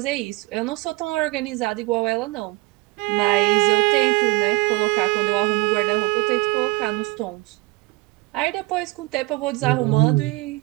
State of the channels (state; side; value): quieter; left; 22.5 dB